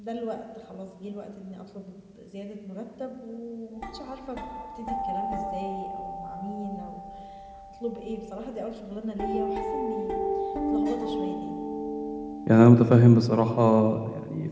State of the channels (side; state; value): both; identical; correlation 1.00